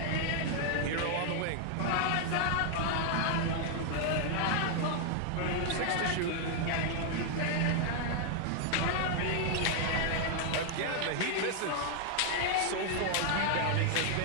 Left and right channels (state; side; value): different; both; correlation 0.00